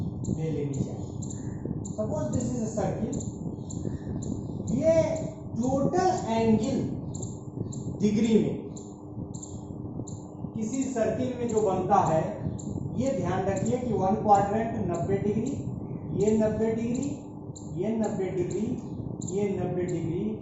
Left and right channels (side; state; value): both; identical; correlation 1.00